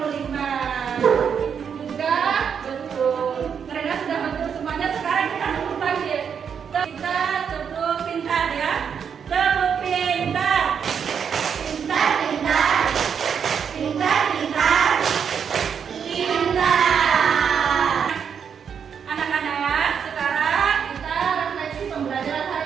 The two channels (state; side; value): quieter; left; 7.2 dB